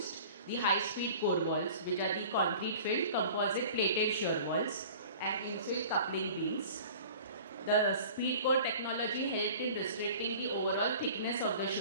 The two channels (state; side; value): inverted; both; correlation -0.43